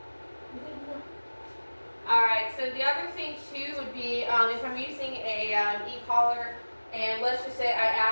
Alright, so the other thing too would be if I'm using a e-collar, and let's just say I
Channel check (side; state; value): both; inverted; correlation -1.00